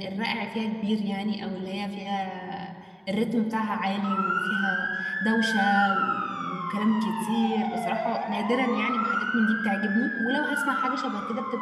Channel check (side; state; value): both; identical; correlation 1.00